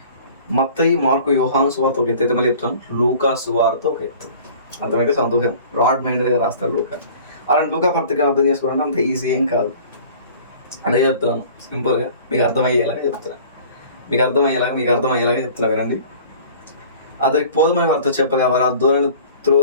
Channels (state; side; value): inverted; both; correlation -0.47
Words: మత్తయి, మార్కు, యోహాను సువార్త ఒక ఎత్తు అయితే మళ్ళీ చెప్తాను, లూకా సువార్త ఒక ఎత్తు. అర్థమైతే సంతోషం. బ్రాడ్ మైండ్గా రాస్తాడు లూకా. అలాంటి లూకా పత్రికను అర్థం చేసుకోవాలంటే అంత ఈజీ ఏం కాదు. అదే చెప్తున్నాను, సింపుల్గా మీకు అర్థమయ్యేలాగా చెప్తున్నా వినండి. అతనికి పోదమని వారితో చెప్పగా వారు ఆ దోణిని